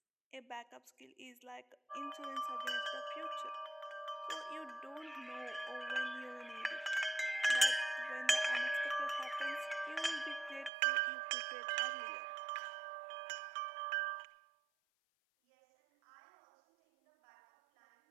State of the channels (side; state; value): left; drops out; at 10.7 s